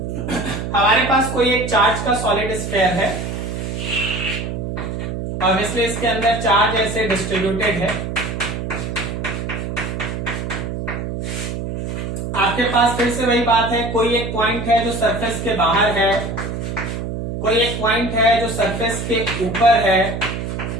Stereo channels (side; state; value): right; noise; hum, 4 dB below the sound